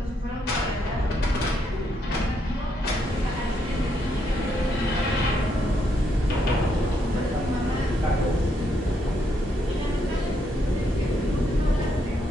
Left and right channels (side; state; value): both; normal; correlation 0.76